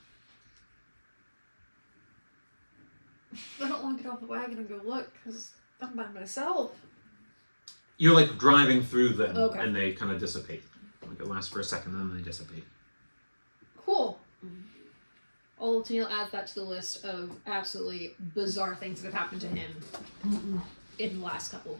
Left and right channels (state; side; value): inverted; both; correlation -1.00